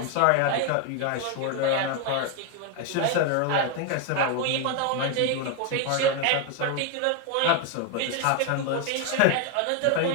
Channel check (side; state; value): both; different; correlation 0.01